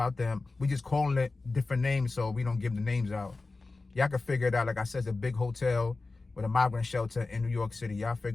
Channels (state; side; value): quieter; right; 3.6 dB